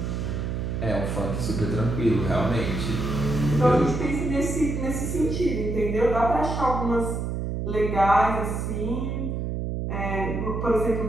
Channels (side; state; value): right; noise; hum, 2 dB below the sound